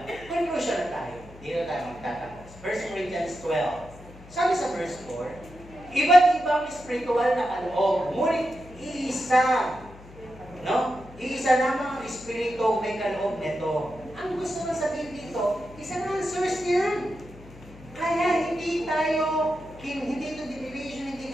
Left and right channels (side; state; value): left; noise; hum, 19 dB below the sound